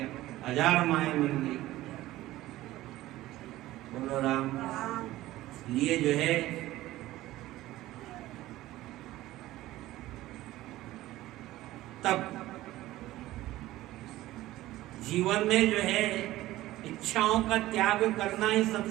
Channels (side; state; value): left; quieter; 16.2 dB